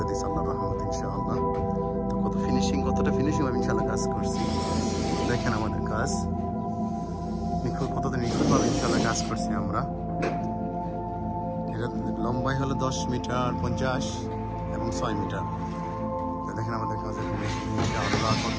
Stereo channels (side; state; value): both; identical; correlation 1.00